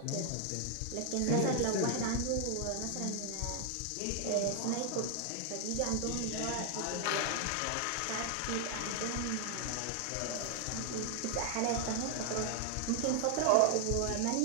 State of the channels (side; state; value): both; different; correlation 0.00